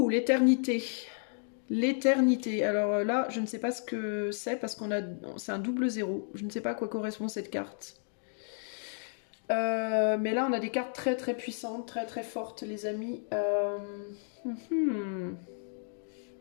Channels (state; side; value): silent; right; 56 dB below the other